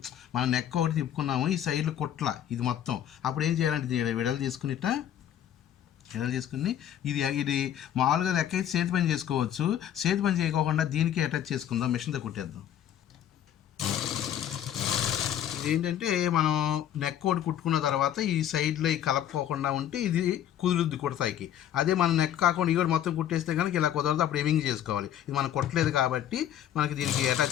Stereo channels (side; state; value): right; quieter; 10.7 dB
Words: మనం నెక్ ఒకటి తిప్పుకున్నాము, ఈ సైడ్లు కుట్ల ఇది మొత్తం. అప్పుడు ఏం చేయాలంటే విడలు తీసుకుని ఇది మామూలుగా లెక్క అయితే చేతి పని చేసుకోవచ్చు. చేతి పని చేయకోకుండా దీనికి అటాచ్ చేసుకుందాం, మిషన్తో కుట్టేద్దాం. ఏంటంటే మనం నెక్ ఒకటి కుట్టుకున్న తర్వాత ఈ సైడ్లో కలపకోకుండా ఉంటే ఇది కుదురుద్ది కుడతాయికి. అదే మన నెక్ కాకుండా ఇవి మొత్తం కుట్టేస్తే కనుక ఇలా కుదరదు, అప్పుడు ఎమింగ్ చేసుకోవాలి. ఇది మనం కుట్టలేదు కాబట్టి మనకి దీనికి